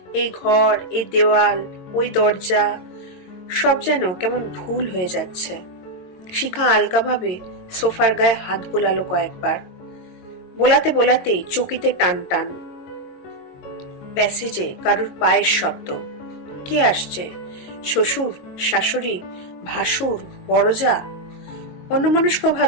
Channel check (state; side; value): late; right; 22 ms